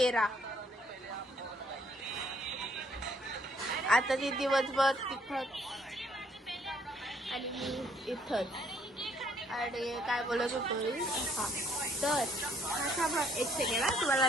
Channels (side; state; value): both; normal; correlation 0.67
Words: आता ती दिवसभर तिथंच आणि मी इथंच. आणि काय बोलत होतो मी. हा तर एक सेकंड तुम्हाला